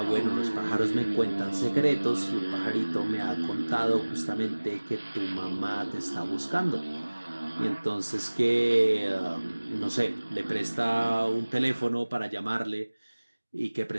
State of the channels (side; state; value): both; inverted; correlation -1.00